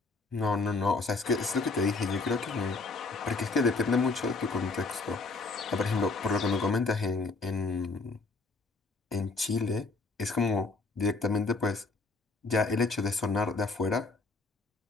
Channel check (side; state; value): right; quieter; 3.8 dB